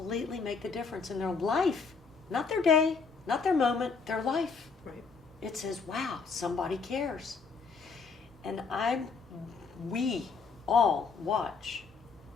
make the difference in their life. Not their day, not their moment, their life. Right. It says, wow, somebody cares. And we all watch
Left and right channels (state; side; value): quieter; right; 5.0 dB